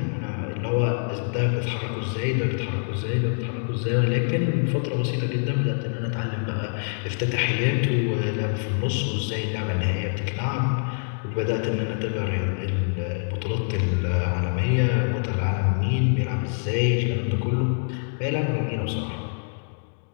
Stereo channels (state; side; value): silent; right; digital silence